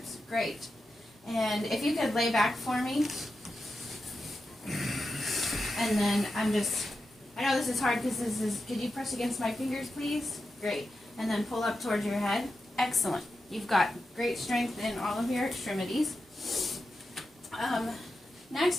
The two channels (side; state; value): both; normal; correlation 0.90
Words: Great. And if you could lay back for me. And then I know this is hard because could you press against my fingers, please? Great. And then pull up towards your head. Excellent. You've got great strength in all of your extremities. Next,